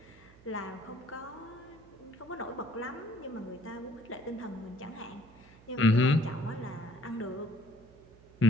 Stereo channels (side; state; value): right; noise; hum, 24 dB below the sound